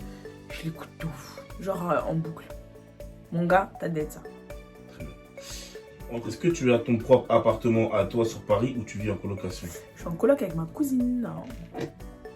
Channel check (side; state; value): both; identical; correlation 1.00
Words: je l'écoute de ouf. Genre en boucle. Mon gars, t'as d'être ça. Est-ce que tu as ton propre appartement à toi sur Paris ou tu vis en colocation? Je suis en coloc avec ma cousine. Non.